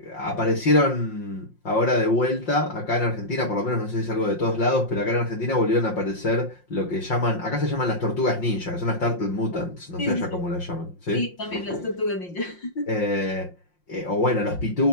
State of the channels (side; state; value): right; late; 5.6 ms